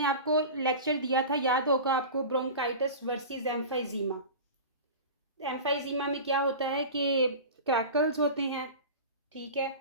आपको लेक्चर दिया था, याद होगा आपको, ब्रोंकाइटिस वर्सेस एम्फाइजीमा। एम्फाइजीमा में क्या होता है कि क्रैकल्स होते हैं, ठीक है,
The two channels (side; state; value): both; inverted; correlation -0.32